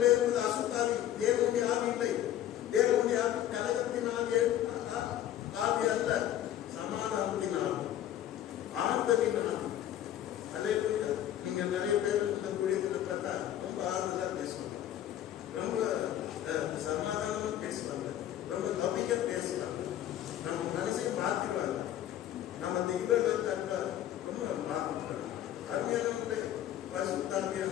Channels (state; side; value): quieter; right; 11.7 dB